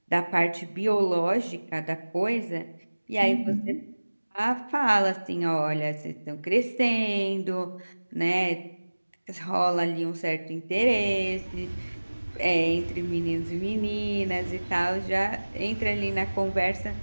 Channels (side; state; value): both; inverted; correlation -1.00